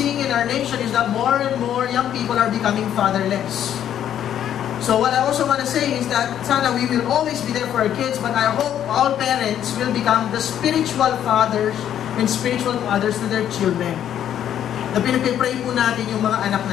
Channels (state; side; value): quieter; right; 10.3 dB